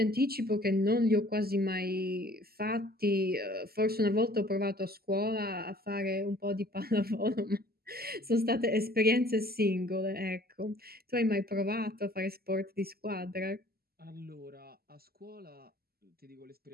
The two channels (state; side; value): late; left; 0.45 ms